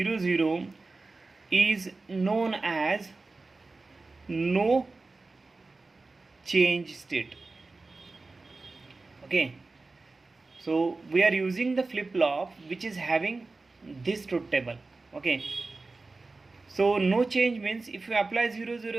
0 is known as no change state. Okay, so we are using the flip flop which is having this truth table. Okay, so no change means if you apply 0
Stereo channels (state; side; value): quieter; left; 3.6 dB